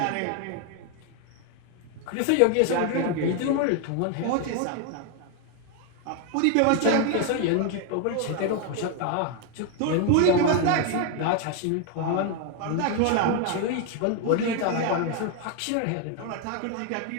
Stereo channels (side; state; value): both; different; correlation 0.01